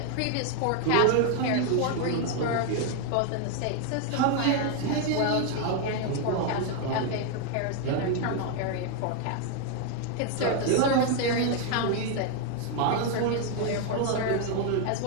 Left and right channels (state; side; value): different; both; correlation 0.01